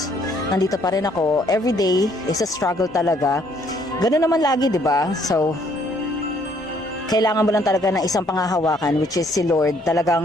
nandito pa rin ako. Every day is a struggle talaga. Ganun naman lagi, di ba? So, kailangan mo lang talaga ng isang pangahawakan, which is si Lord.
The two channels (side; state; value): both; normal; correlation 0.65